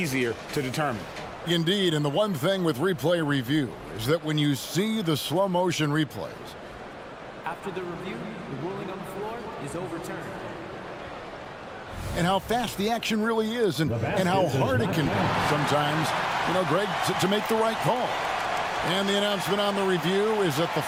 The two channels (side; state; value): both; identical; correlation 1.00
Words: to determine. Indeed, and the one thing with replay review is that when you see the slow motion replays, after the review, the ruling on the floor is overturned. And how fast the action really is, and how hard it can be sometimes, you know, Greg, to make the right call. And the announcement on the review is that the